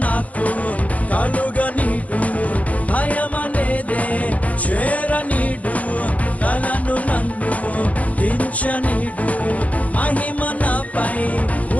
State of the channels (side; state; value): right; late; 0.068 ms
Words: నాకు కలుగనీడు, భయమనేదే చేరనీడు. తలను నన్ను దించనీడు, మహిమ నాపై